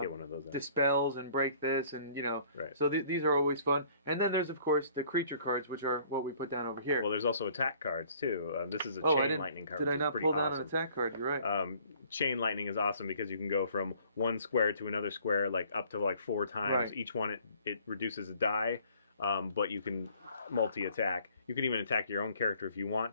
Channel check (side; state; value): both; inverted; correlation -0.57